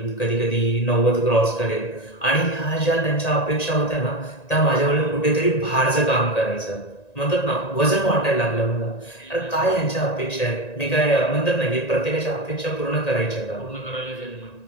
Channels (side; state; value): right; late; 1.9 ms